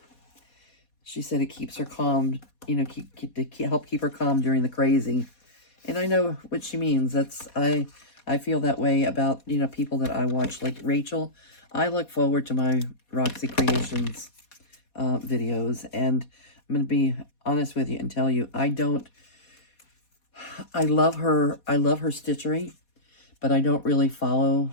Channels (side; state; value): right; late; 4.2 ms